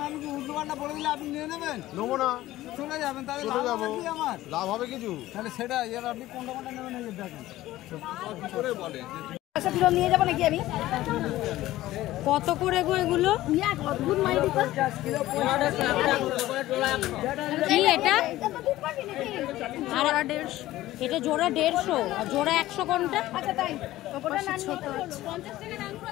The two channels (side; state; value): right; quieter; 15.8 dB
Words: আমি কি উল্টো পাল্টা বলে দিলে আপনি নিয়ে নেবেন? নেবো না, চলে যাবেন, তাহলে চলে লাভ যাবো। হবে কি আমার? লাভ হবে কিছু? তাহলে সেটা এর আপনি কোনটা নেবেন এই যে দেখেন। নিয়ে যাবো নাকি আমি? কত করে গো এগুলো? অদ্ভুত মাইরি তো। কি এটা? জোড়া 150। এটা জোড়া 150 আর জোড়া 100 কোনটা? আচ্ছা তাই, ওটা না ছোট নিয়ে আছে। 50 টাকা দাম করে